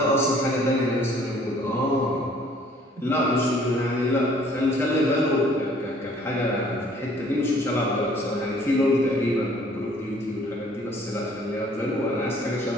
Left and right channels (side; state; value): both; normal; correlation 0.57